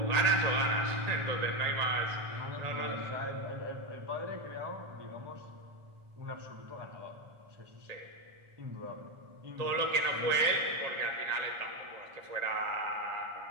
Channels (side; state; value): left; late; 1.8 ms